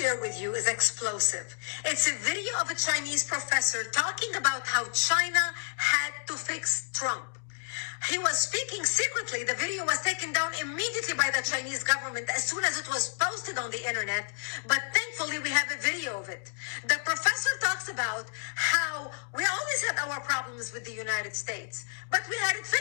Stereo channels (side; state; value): right; silent; digital silence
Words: with you is explosive. It's a video of a Chinese professor talking about how China had to fix Trump. He was speaking secretly. The video was taken down immediately by the Chinese government as soon as it was posted on the internet. But thankfully, we have a video of it. The professor talks about how we always had our problems with the United States, but we had it